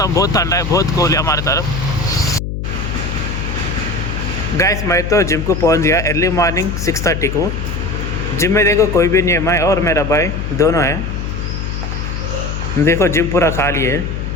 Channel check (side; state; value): left; noise; hum, 4 dB below the sound